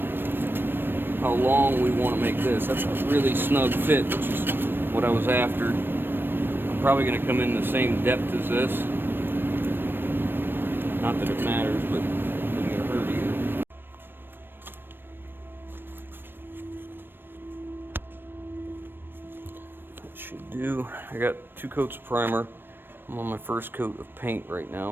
long we want to make this. That's a really snug fit, which is what I was after. I'm probably going to come in the same depth as this. Not that it matters, but it doesn't get hurt either. That should do. I got 2 coats of primer. I'm on my first coat of paint right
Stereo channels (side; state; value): left; late; 0.097 ms